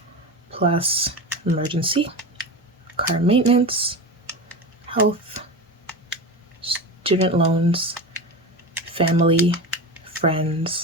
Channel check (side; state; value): both; normal; correlation 0.25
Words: plus emergency, car maintenance, health, student loans, family,